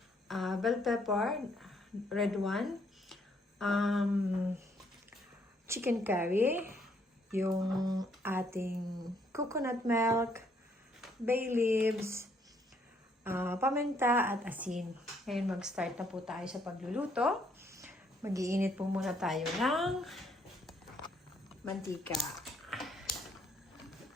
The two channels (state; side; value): normal; both; correlation 0.69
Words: bell pepper, red one, chicken curry, yung ating coconut milk, bay leaves, paminta at asin. Ngayon mag-start na po tayo sa pagluluto. Mag-iinit po muna tayo ng mantika.